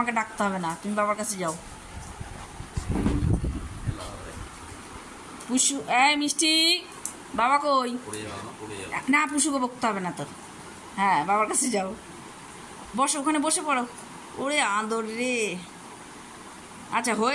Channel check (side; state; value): both; identical; correlation 1.00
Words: ডাকতে হবে না, তুমি বাবার কাছে যাও। পুষু, মিষ্টি বাবা কই? না, পুষুকে বকতে হবে না তোর। হ্যাঁ, বাবার কাছে যাও, বসো ওখানে, বসে পড়ো। ওরে আদর রে, আচ্ছা